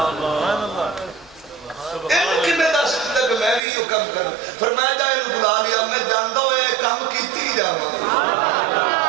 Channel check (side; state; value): left; drops out; at 3.6 s